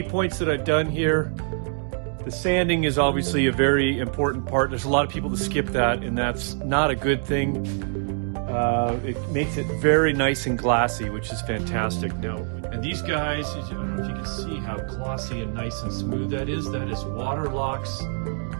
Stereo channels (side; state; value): left; silent; 59 dB below the other